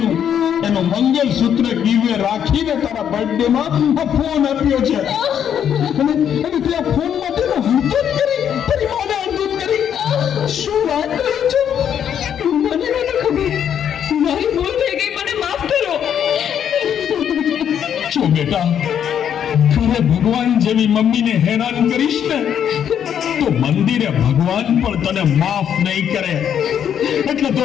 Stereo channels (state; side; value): quieter; right; 9.0 dB